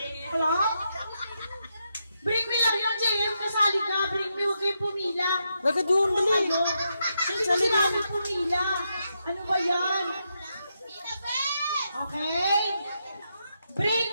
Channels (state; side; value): inverted; both; correlation -0.83